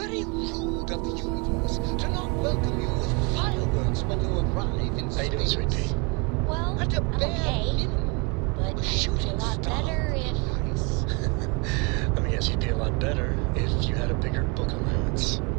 rude of the universe to not welcome you with fireworks when you arrive in space. How you doing, sweetie? Well, At a I'm bare okay. minimum, But a it'd be shooting a lot star. better if... Let me guess, you'd be a lot better if you had a bigger book allowance.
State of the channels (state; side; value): quieter; left; 31.2 dB